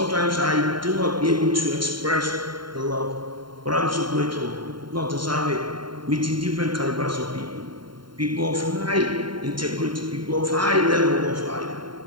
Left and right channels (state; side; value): late; left; 0.72 ms